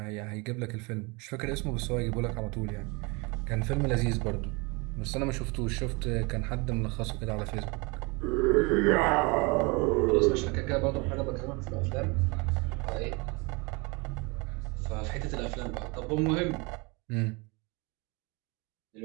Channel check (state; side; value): quieter; left; 28.3 dB